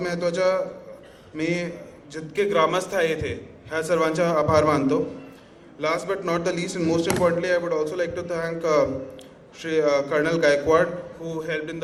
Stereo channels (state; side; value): identical; both; correlation 1.00